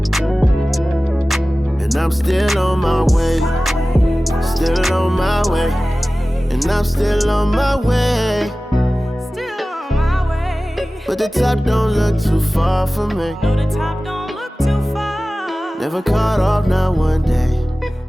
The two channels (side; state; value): both; normal; correlation 0.97